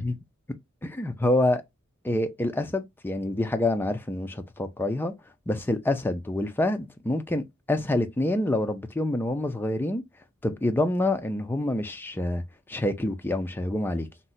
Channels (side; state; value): both; normal; correlation 0.81